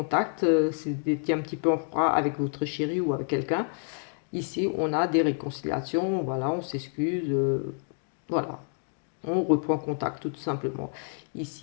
c'est un petit peu en froid avec votre chéri ou avec quelqu'un. Ici, on a des réconciliations, voilà, on s'excuse, voilà, on reprend contact tout simplement.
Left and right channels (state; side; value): silent; right; 57 dB below the other